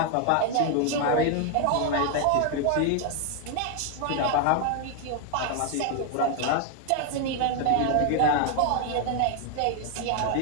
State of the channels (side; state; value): both; different; correlation 0.01